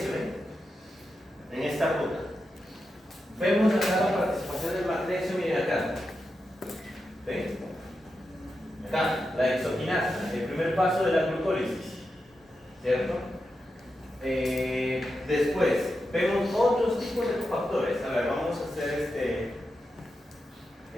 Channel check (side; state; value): both; normal; correlation 0.88